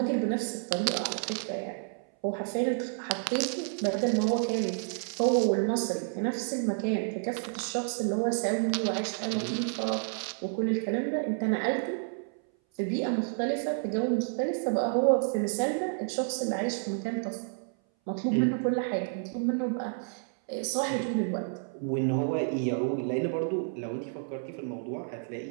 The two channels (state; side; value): silent; left; 58 dB below the other